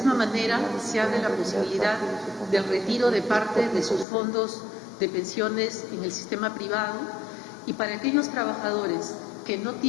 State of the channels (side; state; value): right; drops out; at 4.0 s